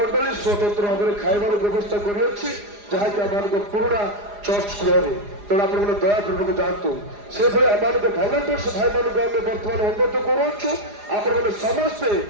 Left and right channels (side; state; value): left; late; 4.9 ms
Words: ସ୍ୱତନ୍ତ୍ର ଭାବରେ ଖାଇବାର ବ୍ୟବସ୍ଥା କରିଅଛି ଯାହାକି ଆମମାନଙ୍କ ପୁରୁଣା ଚର୍ଚ୍ଚ ଗୃହରେ ତେଣୁ ଆପଣମାନେ ଦୟାପୂର୍ବକ ଯାଆନ୍ତୁ ସେଭଳି ଆମମାନଙ୍କ ଭଲେଣ୍ଟିୟର୍ସ ଭାଇମାନଙ୍କୁ ଆମେ ବର୍ତ୍ତମାନ ଅନୁରୋଧ କରୁଅଛୁ ଆପଣମାନେ ସମସ୍ତେ